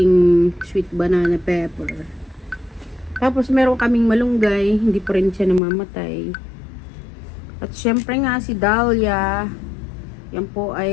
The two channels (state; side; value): drops out; right; at 5.6 s